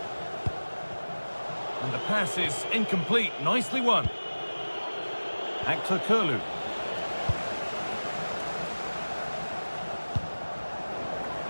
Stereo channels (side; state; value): both; inverted; correlation -1.00